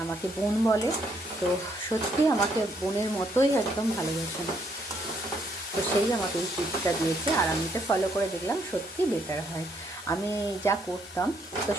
আমাকে বোন বলে, তো সত্যি আমাকে বোনের মতোই একদম ভালোবাসেন। তো সেই আমাকে এই টিপসটা দিয়েছে, আর আমি এটা ফলো করে দেখলাম সত্যি বেটার হয়। আমি যা করতাম তো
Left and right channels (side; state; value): both; normal; correlation 0.71